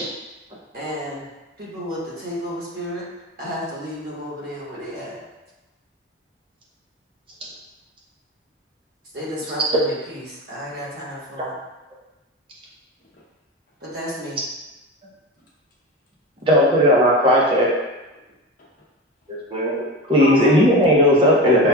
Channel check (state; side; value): normal; both; correlation 0.25